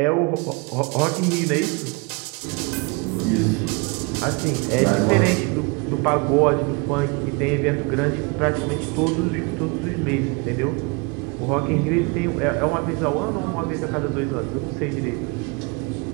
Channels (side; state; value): left; quieter; 29.9 dB